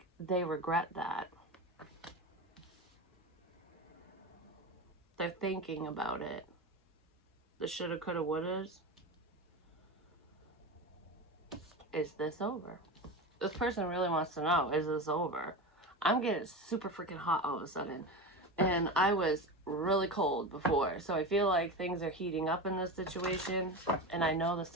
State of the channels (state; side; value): normal; both; correlation 0.24